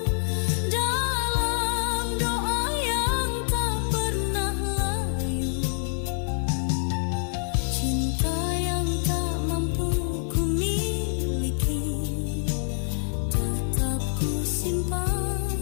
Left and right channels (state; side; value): silent; right; 61 dB below the other